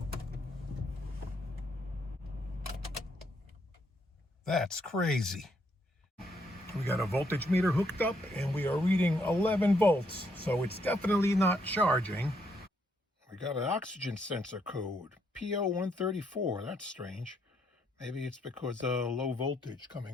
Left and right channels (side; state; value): both; normal; correlation 0.74